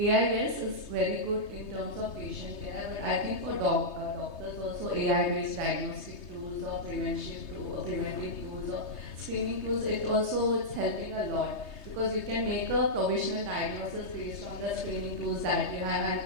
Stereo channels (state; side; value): late; right; 3.3 ms